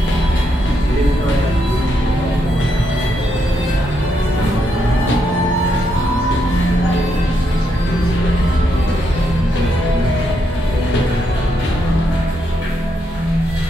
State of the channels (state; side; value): normal; both; correlation 0.79